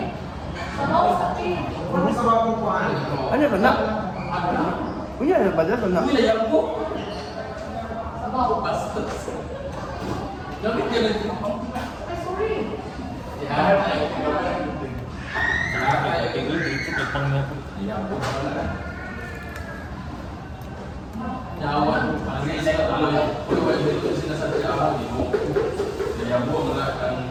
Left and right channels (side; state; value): both; identical; correlation 1.00